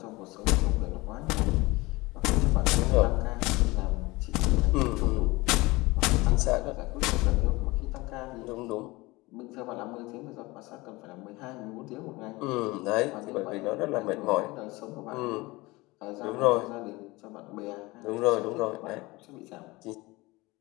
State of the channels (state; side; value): quieter; right; 22.1 dB